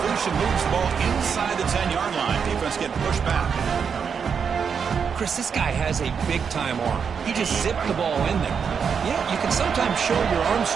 moves the ball inside the 10-yard line. Defense getting pushed back. Chris, this guy has a big-time arm. He just zipped the ball in there. Yeah, you can sometimes show your arm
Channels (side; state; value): left; quieter; 6.5 dB